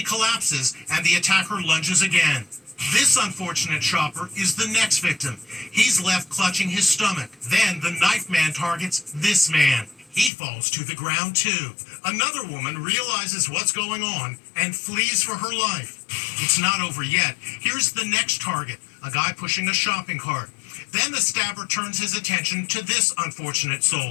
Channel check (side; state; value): right; drops out; at 10.3 s